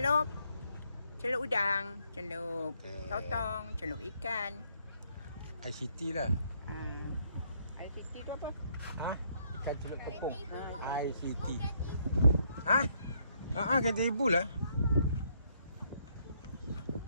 Celup udang, celup Okey. sotong, celup ikan. ICT lah. ICT tu apa? Ikan celup tepung. ICT. Kata ibu lah.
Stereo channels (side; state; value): both; inverted; correlation -0.71